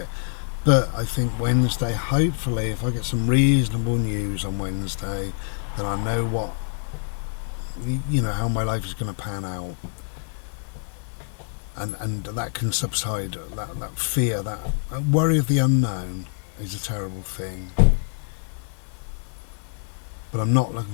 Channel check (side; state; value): right; silent; 62 dB below the other